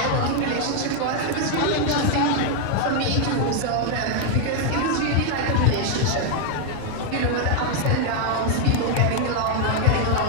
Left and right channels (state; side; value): different; both; correlation 0.00